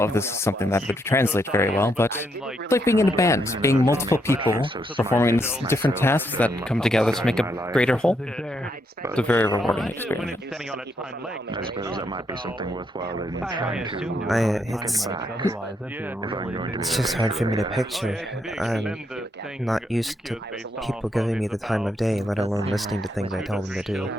if this is something that would translate very well, but it's like being in a band, being multiple people performing different tasks that come together to make a greater whole. It's a very rewarding experience. I suppose that might be something worthwhile in trying to. It's just hard for me to picture. I'm not used to people giving me the time of day, let alone listening to things I tell them to do.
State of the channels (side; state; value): both; normal; correlation 0.77